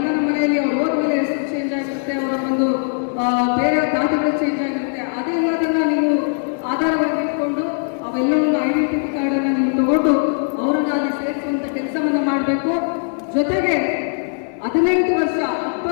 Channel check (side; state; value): right; silent; 66 dB below the other